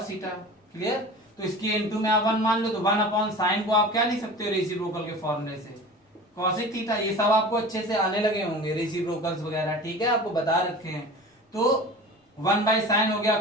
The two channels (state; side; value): normal; both; correlation 0.37